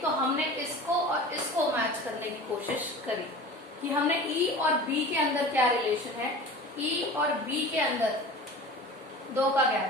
हमने इसको और इसको मैच करने की कोशिश करी कि हमने E और B के अंदर क्या रिलेशन है। E और B के अंदर 2 का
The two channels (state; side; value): normal; both; correlation 0.37